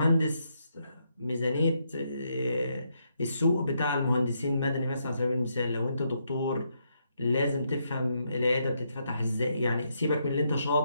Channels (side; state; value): both; inverted; correlation -0.78